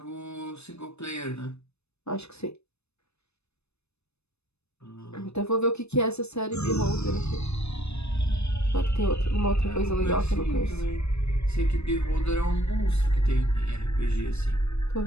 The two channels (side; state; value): right; late; 0.80 ms